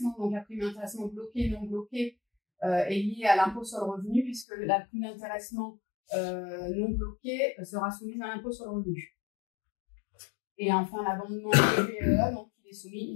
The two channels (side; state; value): right; drops out; at 4.5 s